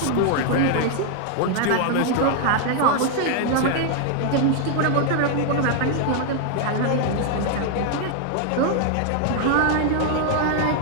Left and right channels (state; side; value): different; both; correlation 0.00